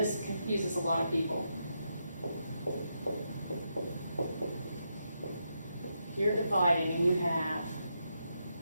confuses a lot of people, you're dividing and you have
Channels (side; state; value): both; inverted; correlation -0.83